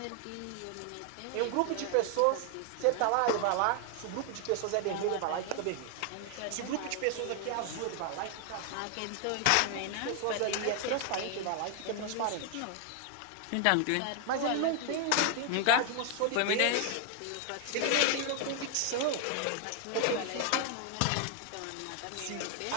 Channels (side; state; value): both; different; correlation 0.00